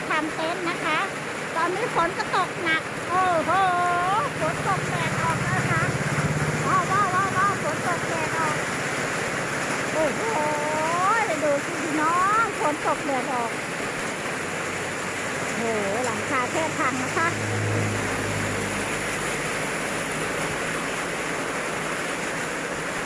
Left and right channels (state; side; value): identical; both; correlation 1.00